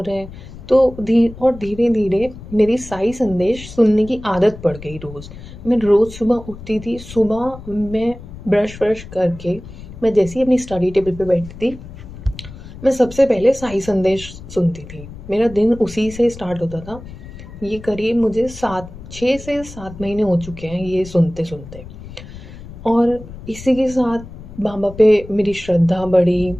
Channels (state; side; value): noise; left; rumble, 15 dB below the sound